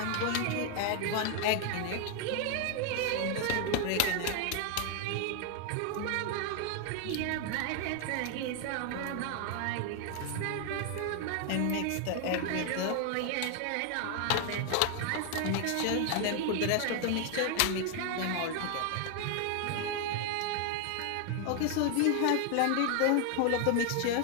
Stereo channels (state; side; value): different; both; correlation 0.00